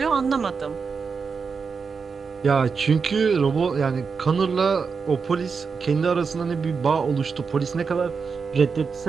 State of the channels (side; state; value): left; quieter; 5.4 dB